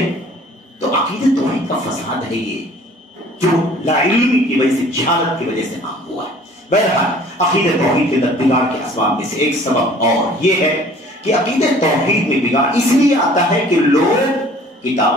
تو عقیدہ توحید کا فساد ہے یہ، جو لا علمی کی وجہ سے، جہالت کی وجہ سے عام ہوا ہے. بہرحال عقیدہ توحید کے بگاڑ کے اسباب میں سے ایک سبب اور یہ ہے کہ عقیدہ توحید میں بگاڑ اس لیے آتا ہے کہ لوگ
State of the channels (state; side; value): normal; both; correlation 0.51